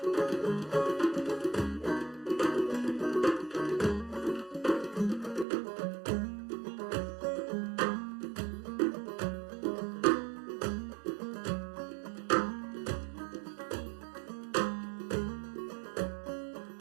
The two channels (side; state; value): left; drops out; at 5.5 s